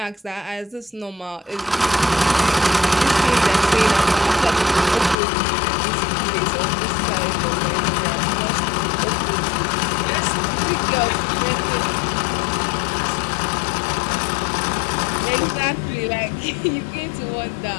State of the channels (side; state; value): right; drops out; at 5.2 s